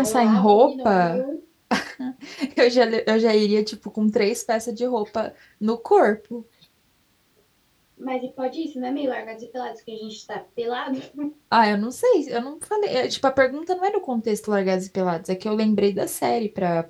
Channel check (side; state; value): both; identical; correlation 1.00